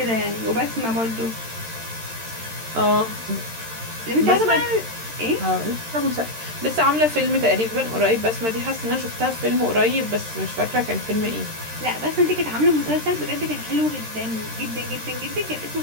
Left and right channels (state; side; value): late; left; 13 ms